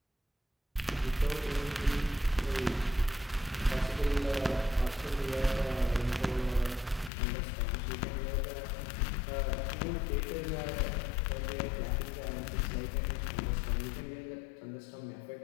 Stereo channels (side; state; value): right; drops out; at 7.1 s